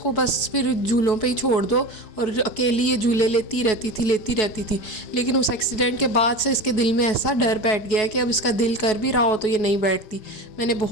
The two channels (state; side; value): late; right; 4.7 ms